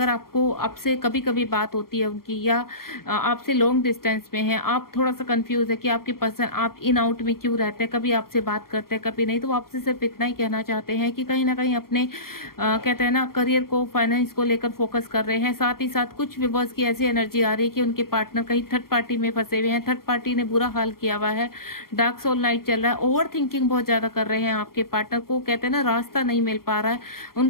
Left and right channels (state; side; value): late; right; 0.93 ms